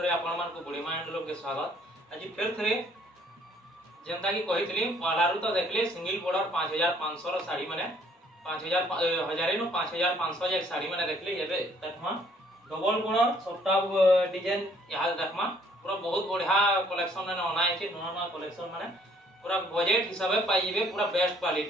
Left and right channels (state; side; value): normal; both; correlation 0.62